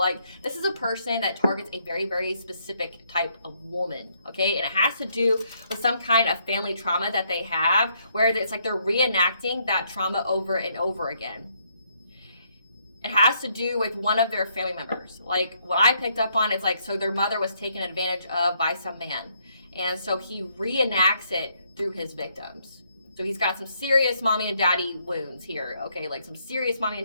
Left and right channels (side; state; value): both; inverted; correlation -0.72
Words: this is a person that targets a very, very specific type of woman, okay? And it has to do with some kind of family trauma that they have, where it's like they're reenacting that trauma over and over again. It has to do with one of their family members. Like what I picked up on, it's like, so their mother was taken advantage of by some man. And so he reenacts it through his victims. So he's got some serious mommy and daddy wounds here, okay? Like some serious mommy and